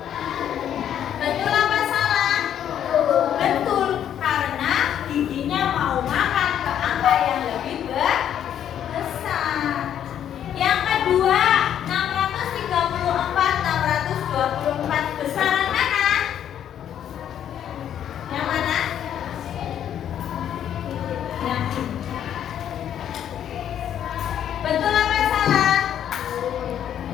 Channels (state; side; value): quieter; right; 9.9 dB